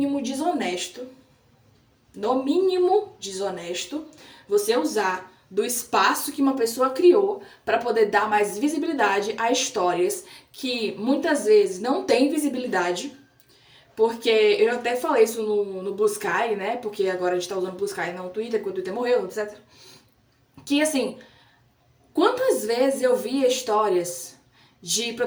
desonesto, você usar do espaço que uma pessoa criou para poder dar mais visibilidade a histórias que muitas vezes não têm visibilidade, porque eu até falei isso no Blue Sky, né? Porque agora a gente tá usando o Blue Sky não o Twitter, porque o Twitter morreu, etc. Que assim, quantas vezes eu vi histórias de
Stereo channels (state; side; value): identical; both; correlation 1.00